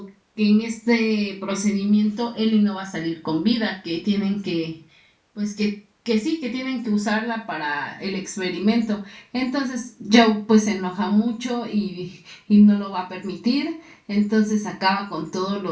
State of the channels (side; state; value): both; identical; correlation 1.00